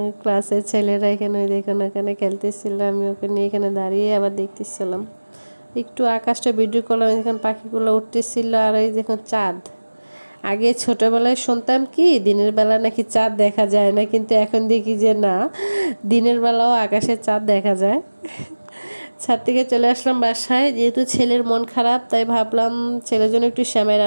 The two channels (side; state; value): both; inverted; correlation -1.00